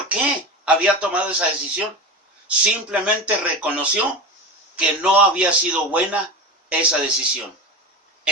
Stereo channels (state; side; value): normal; both; correlation 0.26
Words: qué había tomado esa decisión. Simplemente reconoció que no había sido buena esa decisión.